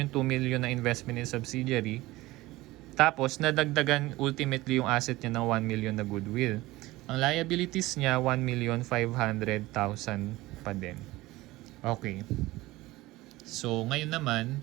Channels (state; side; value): quieter; left; 18.9 dB